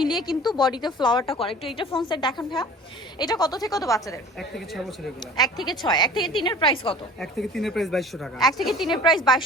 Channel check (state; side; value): normal; both; correlation 0.45